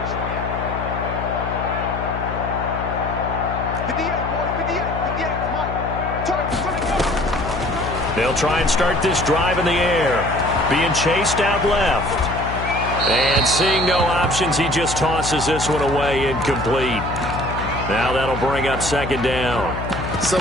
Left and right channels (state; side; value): noise; left; hum, 6 dB below the sound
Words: 58, boys. 58. 58. Mike. Turn. They'll try and start this drive in the air. Being chased out left. And seeing no options, he just tosses this one away, incomplete. Now that'll bring up 2nd down. So